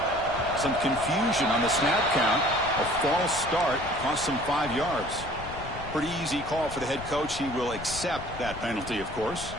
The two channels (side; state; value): left; noise; rumble, 12 dB below the sound